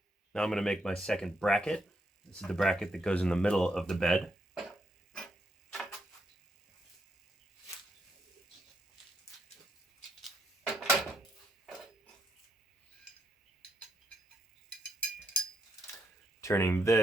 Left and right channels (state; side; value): normal; both; correlation 0.77